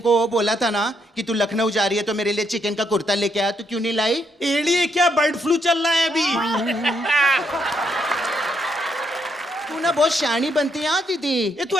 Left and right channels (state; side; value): normal; both; correlation 0.75